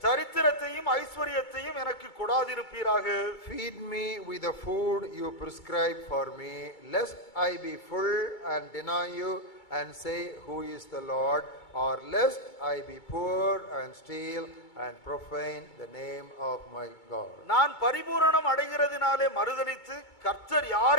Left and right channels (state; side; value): late; right; 2.2 ms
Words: சரித்திரத்தையும் ஐஸ்வரியத்தையும் எனக்கு கொடாதிருப்பீராக. Feed me with the food you prescribe for me, lest I be full and deny you and say, who is the Lord? Or lest I be poor and steal and profane the name of my God. நான் பரிபூரணம் அடைகிறதினாலே மறுதலித்து கர்த்தர்